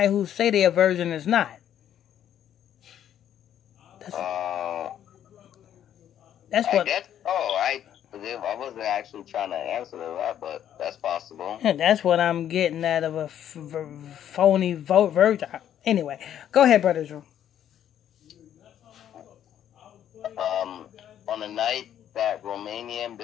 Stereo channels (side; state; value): right; quieter; 10.4 dB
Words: who say they're a virgin is not. That's what. I wasn't actually trying to answer that, but that's possible. That's what I'm getting out of a phony virgin. Anyway, go ahead, Brother Drew. On the night that Romanian